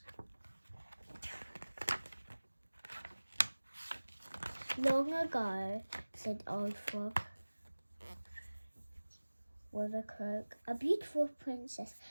Long ago, said Old Frog with a croak, a beautiful princess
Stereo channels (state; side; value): inverted; both; correlation -1.00